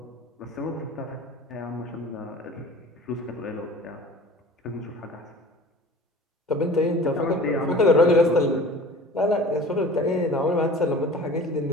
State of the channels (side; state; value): both; normal; correlation 0.42